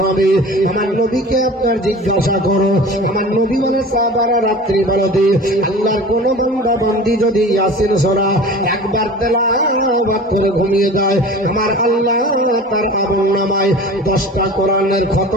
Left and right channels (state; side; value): normal; both; correlation 0.38